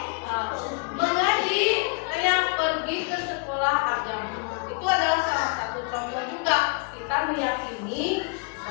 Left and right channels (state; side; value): quieter; right; 32.8 dB